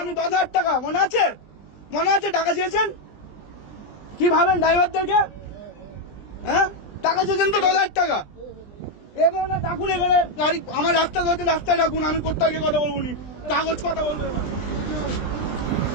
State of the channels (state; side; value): late; right; 20 ms